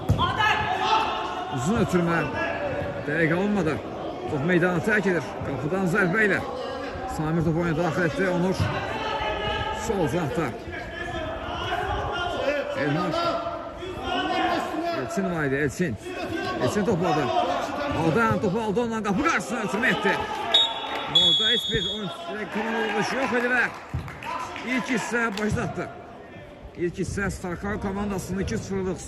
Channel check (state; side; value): identical; both; correlation 1.00